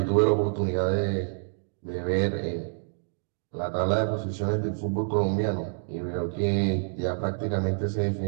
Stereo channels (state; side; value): silent; left; digital silence